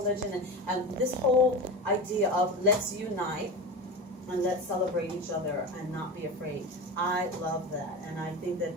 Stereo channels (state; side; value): normal; both; correlation 0.25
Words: and this whole idea of let's unite and let's celebrate each other and not be afraid. I love that, and I think that